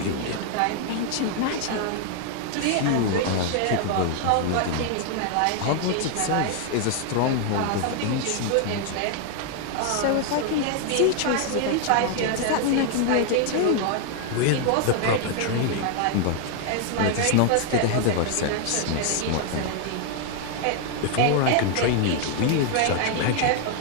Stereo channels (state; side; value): different; both; correlation 0.00